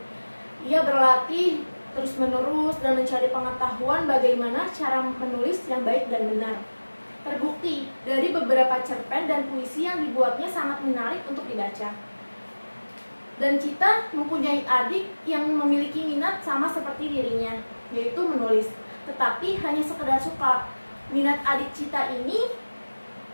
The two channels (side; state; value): both; inverted; correlation -1.00